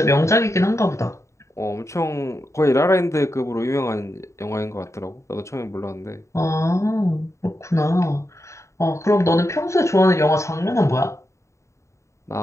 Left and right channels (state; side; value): late; right; 0.14 ms